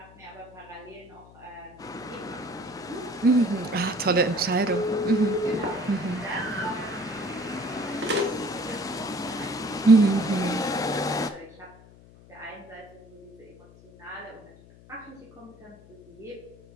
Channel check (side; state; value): left; noise; hum, 23 dB below the sound